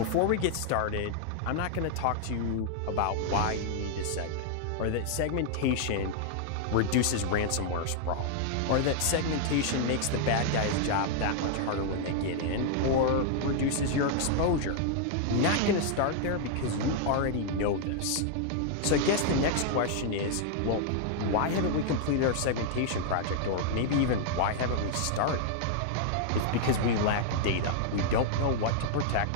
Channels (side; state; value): both; different; correlation -0.01